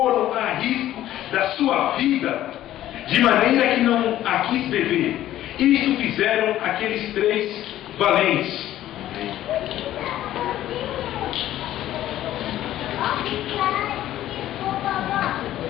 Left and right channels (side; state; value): right; quieter; 13.3 dB